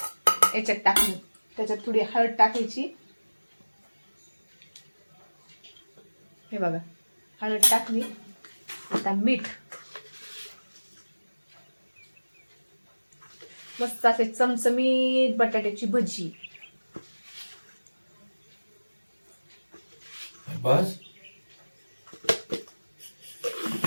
याच्यात टाकली. त्याच्यात थोडी हळद टाकायची, हे बघा हळद टाकली. आता मीठ, मस्त असे चमचमीत बटाट्याची भजी. बस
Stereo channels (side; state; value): both; inverted; correlation -1.00